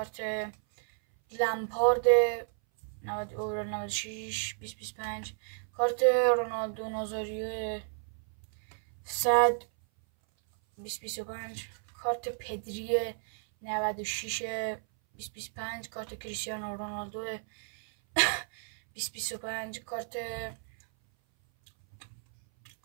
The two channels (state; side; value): silent; left; 56 dB below the other